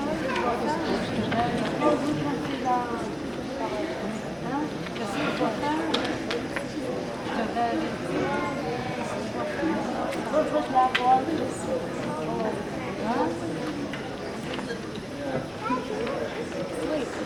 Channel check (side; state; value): both; identical; correlation 1.00